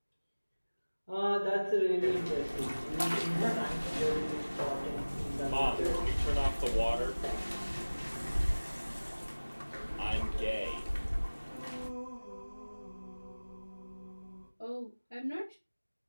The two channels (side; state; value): both; inverted; correlation -1.00